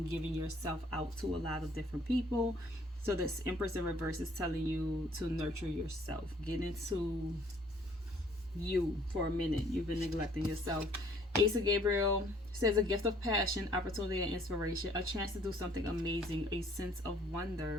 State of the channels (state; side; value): normal; both; correlation 0.60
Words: giving yourself out to a lot of different people. So this Empress in reverse is telling you to nurture yourself. Get into you for a minute. You've been neglecting yourself. Ace of Gabriel says a gift of passion, opportunity, and inspiration. A chance to do something amazing. A sense of